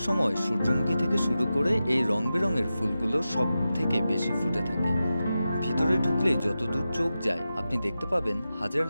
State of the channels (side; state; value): both; inverted; correlation -0.92